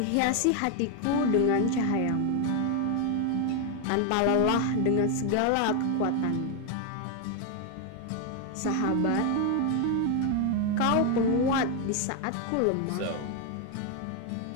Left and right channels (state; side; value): different; both; correlation 0.01